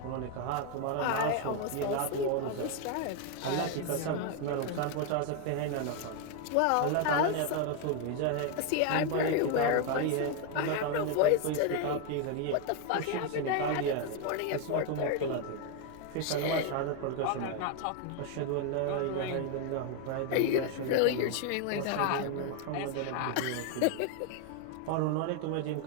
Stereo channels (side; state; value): both; different; correlation 0.01